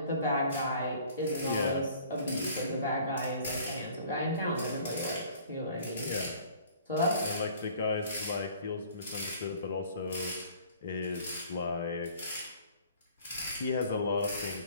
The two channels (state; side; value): inverted; both; correlation -0.52